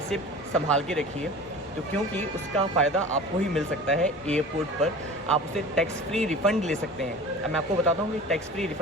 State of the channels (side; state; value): both; normal; correlation 0.38